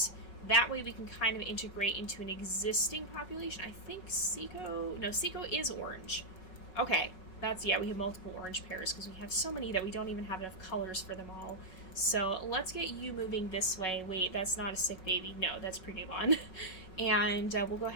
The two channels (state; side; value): late; right; 5.4 ms